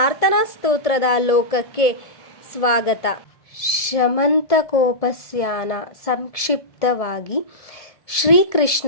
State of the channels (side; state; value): right; late; 1.7 ms